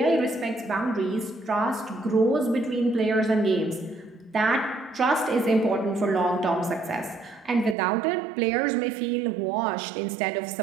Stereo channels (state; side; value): drops out; left; at 7.8 s